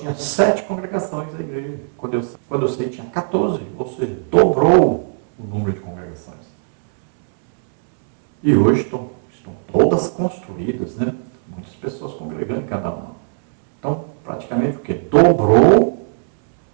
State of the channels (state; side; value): silent; left; 67 dB below the other